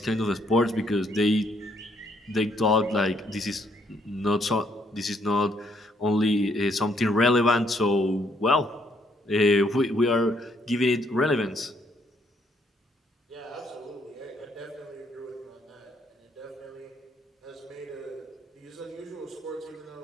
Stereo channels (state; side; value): normal; both; correlation 0.70